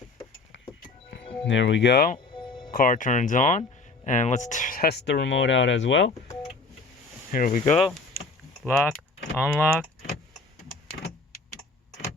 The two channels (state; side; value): quieter; right; 3.6 dB